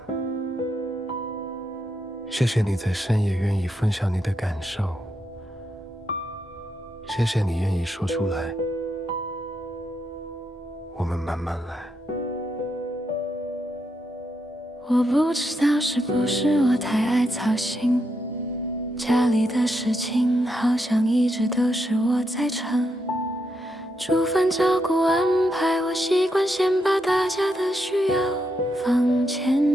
谢谢你在深夜愿意分享你的感受，谢谢你愿意说出来，我们慢慢来。我不知道是不是我太爱操心，家里的事情好像一直都是我在撑，煮饭照顾安排，我习惯先把大家的需要放前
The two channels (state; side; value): normal; both; correlation 0.81